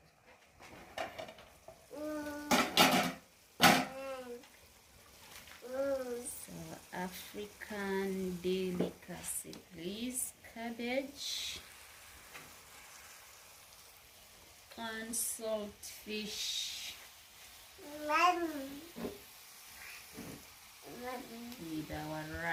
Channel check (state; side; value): identical; both; correlation 1.00